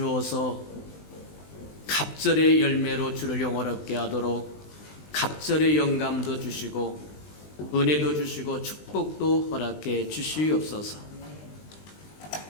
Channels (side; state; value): right; late; 20 ms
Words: 갑절의 열매로 주를 영화롭게 하도록 갑절의 영감도 주시고 은혜도 주시고 축복도 허락해 주시옵소서.